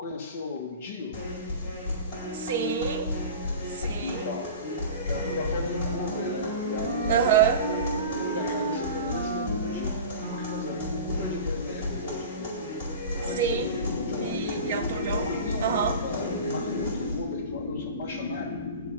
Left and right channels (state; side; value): inverted; both; correlation -0.35